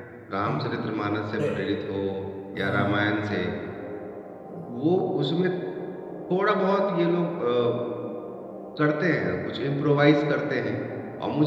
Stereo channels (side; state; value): both; identical; correlation 1.00